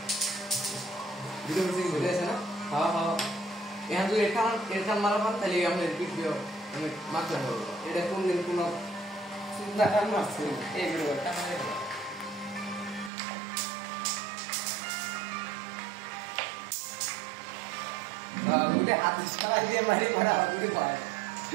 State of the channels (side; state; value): left; drops out; at 13.1 s